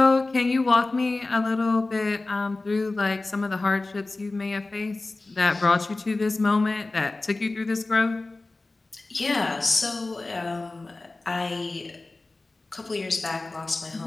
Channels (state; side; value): quieter; right; 3.2 dB